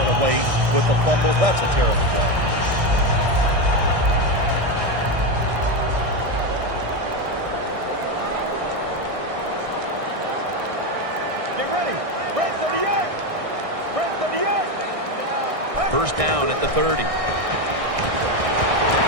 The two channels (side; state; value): left; late; 1.6 ms